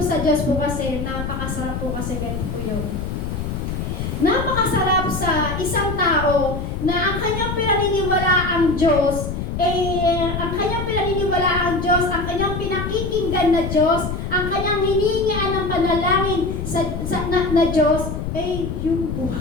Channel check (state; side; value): noise; left; rumble, 4 dB below the sound